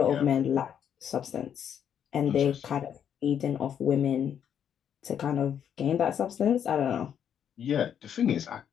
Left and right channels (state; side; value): quieter; right; 8.8 dB